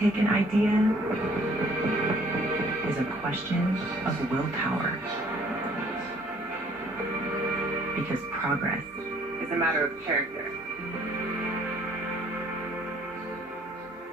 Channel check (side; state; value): both; normal; correlation 0.59